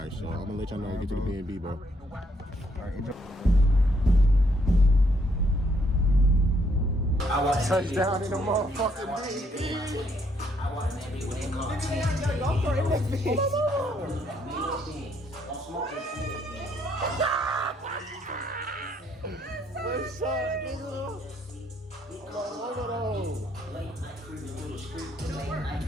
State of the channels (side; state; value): both; normal; correlation 0.70